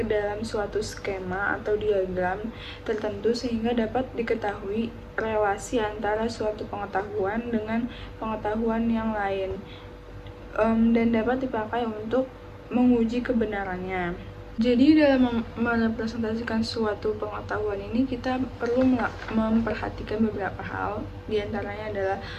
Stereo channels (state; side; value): identical; both; correlation 1.00